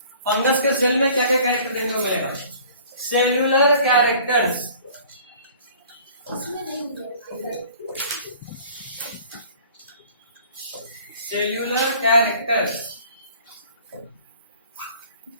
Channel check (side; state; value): both; inverted; correlation -0.50